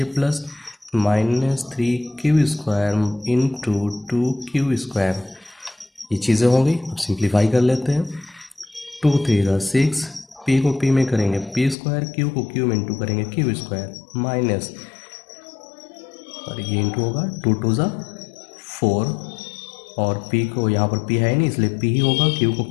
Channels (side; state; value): right; drops out; at 11.8 s